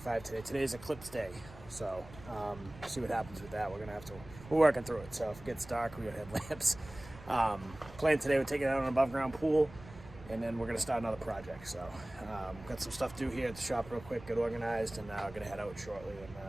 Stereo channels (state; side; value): noise; right; rumble, 18 dB below the sound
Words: today. Today's eclipse day, so see what happens with that. We're working through it. So if it gets dark, we got headlamps. Plan today, we're taking out an above ground pool, and then we're gonna start another project. So got some stuff to do here at the shop real quick, get organized, and I'm gonna head out shortly and